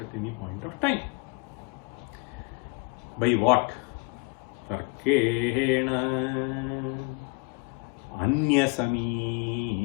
any point of time. By what? Tarkena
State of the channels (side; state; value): right; quieter; 28.7 dB